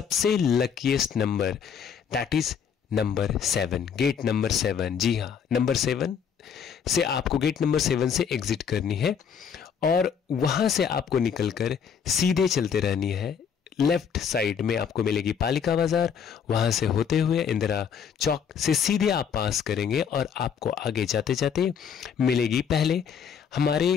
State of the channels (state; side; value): quieter; right; 7.2 dB